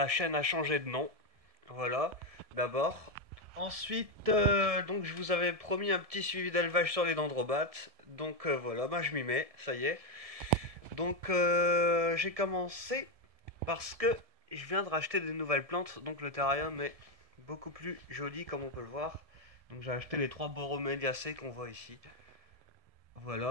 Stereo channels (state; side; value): late; left; 1.7 ms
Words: chaîne a changé de nom, voilà, d'abord. Ensuite, donc je vous avais promis un petit suivi d'élevage sur les dendrobates, donc voilà, bah je m'y mets, ça y est. Donc j'ai commencé parce que je viens de racheter des nouvelles plantes, donc le terrarium est beaucoup plus joli comme on peut le voir. Donc j'ai acheté les trois Borroméliacées qu'on voit ici.